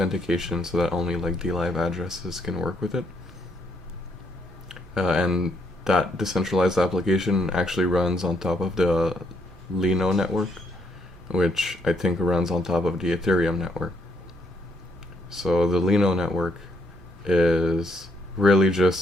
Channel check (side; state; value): both; normal; correlation 0.73